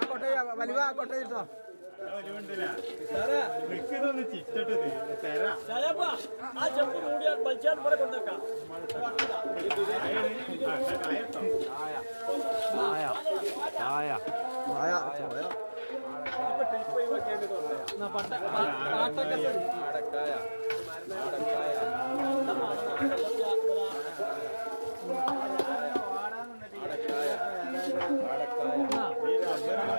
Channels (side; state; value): both; inverted; correlation -1.00